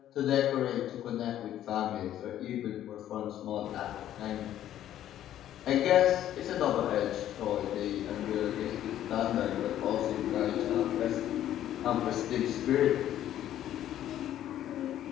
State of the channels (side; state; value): right; quieter; 11.8 dB